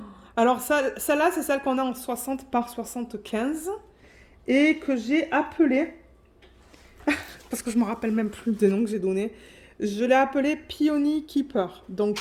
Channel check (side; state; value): both; identical; correlation 1.00